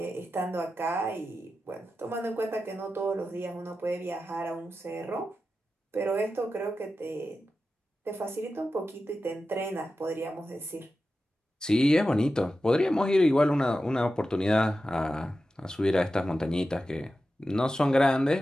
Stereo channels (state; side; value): normal; both; correlation 0.92